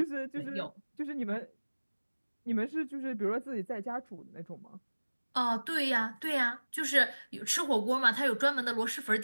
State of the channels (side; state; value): both; inverted; correlation -1.00